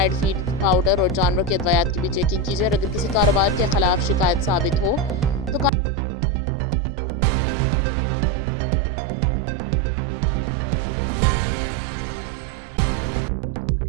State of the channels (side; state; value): left; drops out; at 5.7 s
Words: فیڈ، پاؤڈر اور جانور کے ادویات کی بھی چیکنگ کی جائے اور اگر کسی کاروبار کے خلاف شکایت ثابت ہو تو قانون کے مطابق کارروائی کی جائے۔ ان کا کہنا ہے کہ چند افراد کی غلطی کی بنیاد پر پوری ڈیری فارمنگ کمیونٹی کو بدنام کرنا مناسب نہیں۔